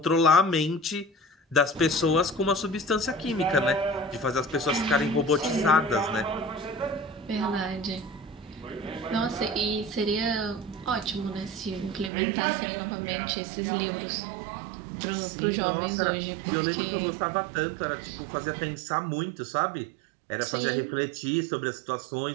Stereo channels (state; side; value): drops out; left; at 12.1 s